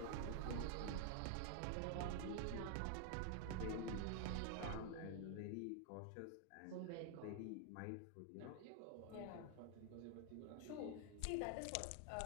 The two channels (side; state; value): both; different; correlation 0.00